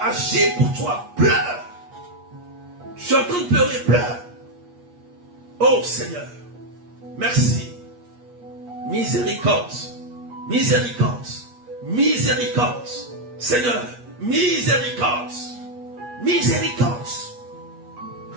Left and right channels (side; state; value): left; late; 8.4 ms